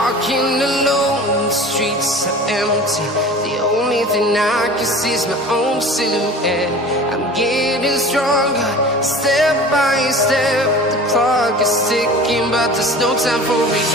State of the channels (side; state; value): both; normal; correlation 0.39